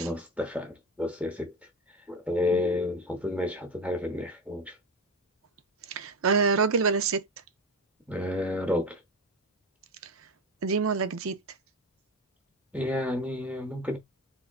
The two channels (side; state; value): both; normal; correlation 0.21